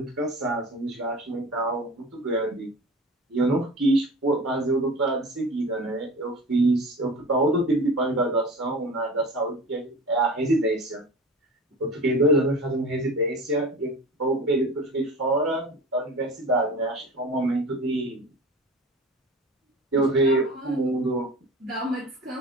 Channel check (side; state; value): both; normal; correlation 0.36